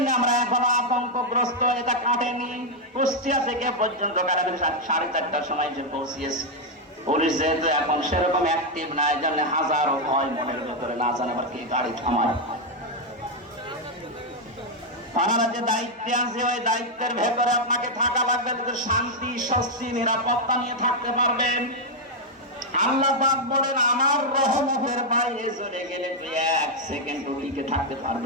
আমরা এখনো আতঙ্কগ্রস্ত। এটা কাটেনি। কুষ্টিয়া থেকে পর্যন্ত 4:30টার সময় যে পৌঁছিয়েছে। পুলিশ যেহেতু এখন সেরকম অ্যাক্টিভ না, এই জন্য হাজারো ভয় মনের ভেতরে, না জানে আবার কি গাড়ি থামায়। আপনারা যে দায়িত্বে আছে ওই দায়িত্বের ভেতরে আপনাকে থাকা লাগবে, শান্তি স্বস্তি নিরাপত্তা নিয়ে থাকতে পারবেন। আল্লাহ পাক বলেন আমার রহমতের বাইরে চলে গেলে তুই 1 সেকেন্ড টিকে থাকতে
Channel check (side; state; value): both; normal; correlation 0.00